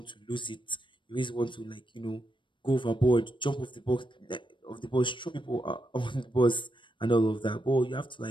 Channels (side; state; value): right; late; 0.23 ms